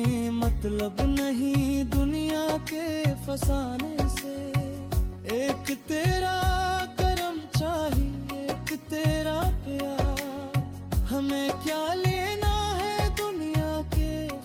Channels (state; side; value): identical; both; correlation 1.00